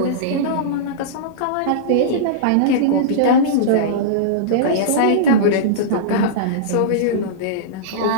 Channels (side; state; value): both; different; correlation -0.04